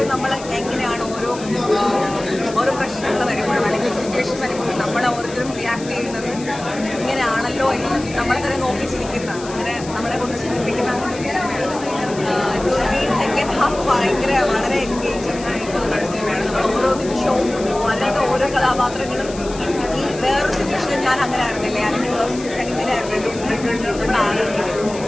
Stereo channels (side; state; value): left; noise; hiss, 15 dB below the sound